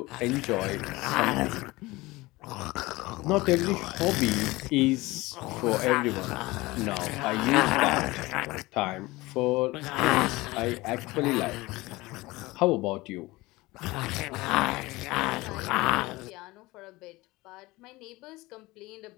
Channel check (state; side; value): quieter; right; 20.8 dB